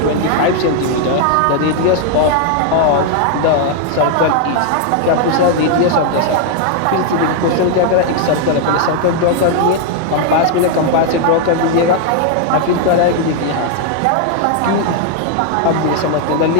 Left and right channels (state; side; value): different; both; correlation 0.00